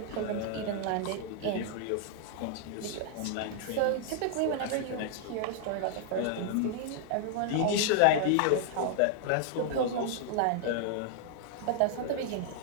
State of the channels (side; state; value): both; different; correlation 0.00